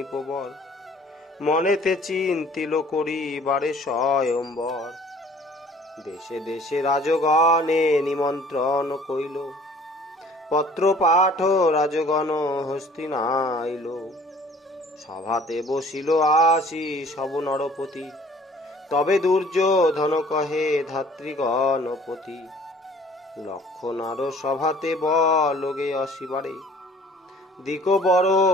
প্রবল, মনেতে চিন্তিল করিবারে স্বয়ম্বর। দেশে দেশে রাজগণে নিমন্ত্রণ কইল, পত্র পাঠ রাজগণ হস্তিনাইল। সভাতে বসিল আসি সব নরপতি, তবে দুর্যোধন কহে ধাত্রীগণপতি। লক্ষণার সভাতে বলগে আসিবারে, দিক বড়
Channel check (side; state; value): both; normal; correlation 0.52